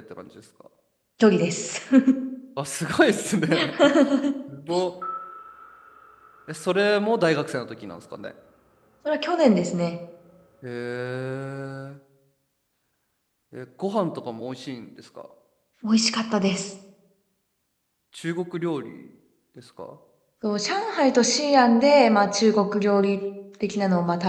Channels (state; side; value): identical; both; correlation 1.00